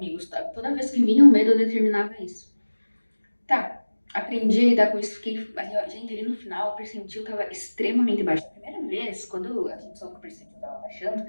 sabe? Toda vez que vinha o medo, eu determinava isso. Tá, aprendi a lidar com isso, fiquei. Gente, ali no final, o percentil tava extremamente baixo. A primeira vez, quando a gente soube que o percentil tava baixando,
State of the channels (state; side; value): inverted; both; correlation -1.00